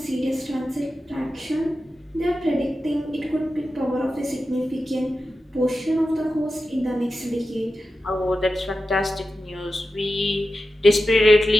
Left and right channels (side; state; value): both; normal; correlation 0.91